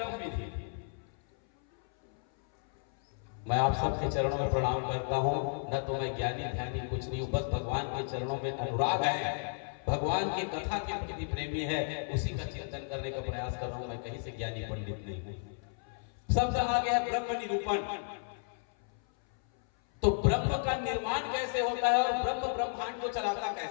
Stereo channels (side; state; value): right; silent; 56 dB below the other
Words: विधि। मैं आप सबके चरणों में प्रणाम करता हूं, न तो मैं ज्ञानी ध्यानी कुछ नहीं हूं, बस भगवान के चरणों में अनुराग है, भगवान की कथा के प्रति प्रेमी है, उसी का चिंतन करने का प्रयास कर रहा हूं। मैं कहीं से ज्ञानी पंडित नहीं हूं। शब्द आ गया ब्रह्म निरूपण। तो ब्रह्म का निर्माण कैसे होता है और ब्रह्म ब्रह्मांड को चलाता